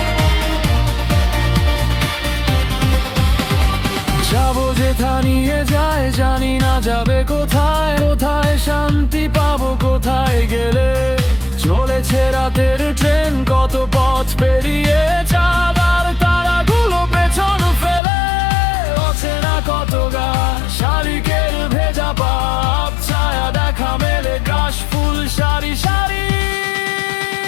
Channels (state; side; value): drops out; right; at 18.0 s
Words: যাবো যেথা নিয়ে যায়, জানি না যাবে কোথায়। কোথায় শান্তি পাবো কোথায় গেলে, চলেছে রাতের ট্রেন কত পথ পেরিয়ে। চাঁদ আর তারাগুলো পেছন ফেলে, অচেনা কত গা শালিকের ভেজা পাপ। ছায়া দেখা মেলে কাশ ফুল সারি সারি।